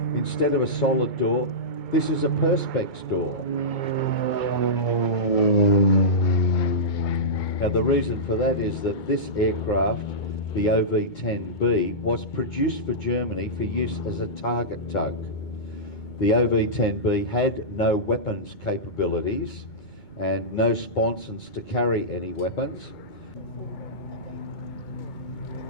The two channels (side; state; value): right; late; 2.2 ms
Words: instead of a solid door, this is a perspex door. Now the reason for that is that this aircraft, the OV10B, was produced for Germany for use as a target tug. The OV10B had no weapons capabilities and no sponsons to carry any weapons.